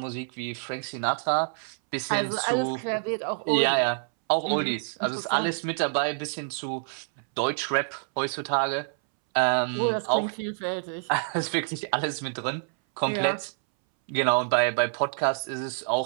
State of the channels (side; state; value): left; silent; 60 dB below the other